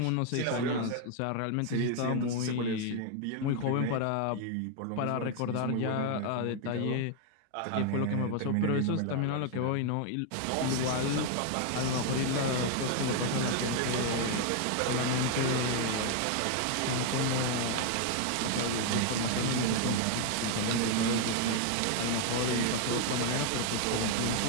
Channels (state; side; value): different; both; correlation 0.00